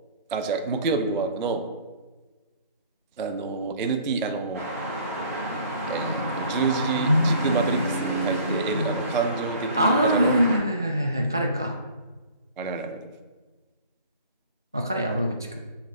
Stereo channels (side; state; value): both; inverted; correlation -0.51